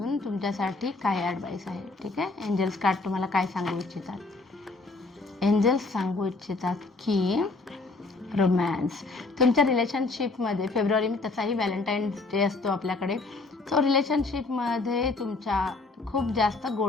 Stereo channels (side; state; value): right; quieter; 3.5 dB